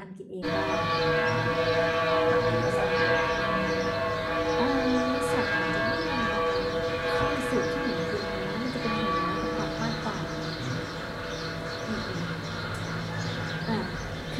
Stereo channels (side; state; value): both; identical; correlation 1.00